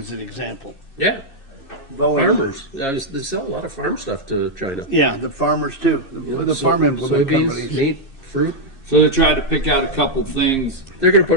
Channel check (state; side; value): late; right; 2.6 ms